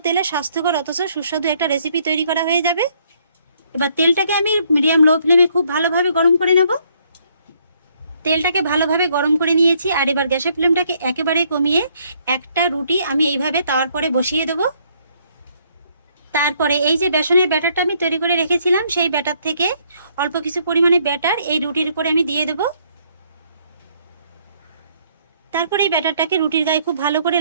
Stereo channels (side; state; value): both; inverted; correlation -0.68